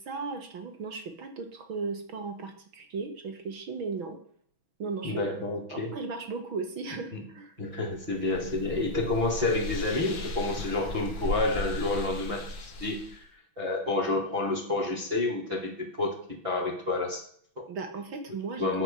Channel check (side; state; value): left; late; 5.9 ms